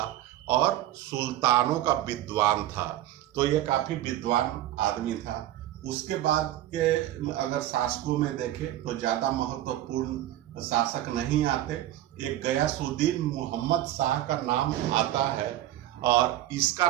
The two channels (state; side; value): quieter; left; 13.8 dB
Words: और सुल्तानों का विद्वान था। तो ये काफी विद्वान आदमी था। उसके बाद के अगर शासकों में देखें तो ज्यादा महत्वपूर्ण शासक नहीं आते। एक गयासुद्दीन मोहम्मद शाह का नाम आता है और इसका